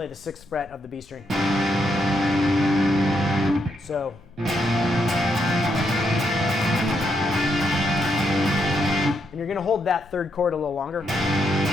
the 6th fret of the B string. So. And you're going to hold that third chord a little longer.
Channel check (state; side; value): noise; left; rumble, 26 dB below the sound